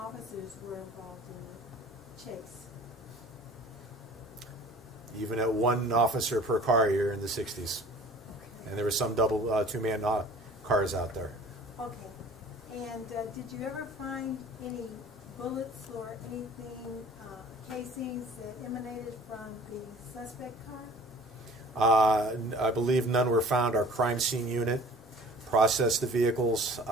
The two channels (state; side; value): normal; both; correlation 0.46